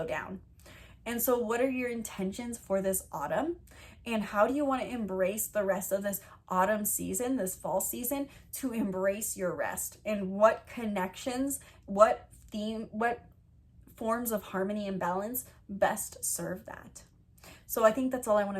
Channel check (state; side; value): identical; both; correlation 1.00